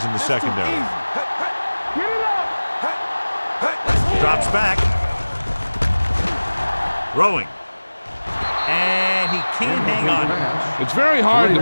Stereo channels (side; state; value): both; inverted; correlation -1.00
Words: in the secondary. Get it up. Drops back. Throwing. And he can't hang on. It's very hard